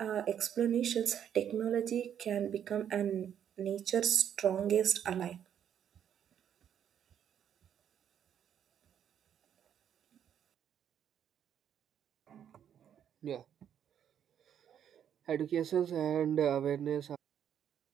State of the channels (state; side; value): quieter; left; 9.2 dB